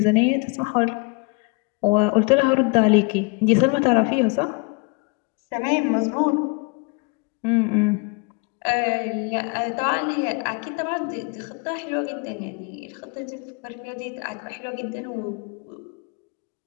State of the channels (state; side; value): quieter; right; 31.3 dB